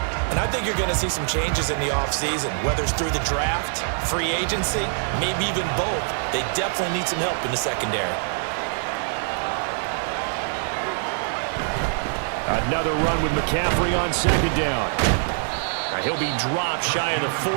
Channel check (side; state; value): left; silent; digital silence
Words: And I think you're going to see some changes in the offseason, whether it's through the draft, free agency, maybe even both. They definitely need some help in the secondary. Another run with McCaffrey on second down. He'll be dropped shy of the